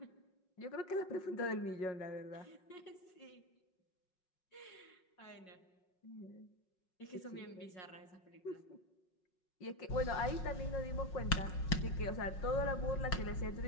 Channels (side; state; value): right; late; 5.5 ms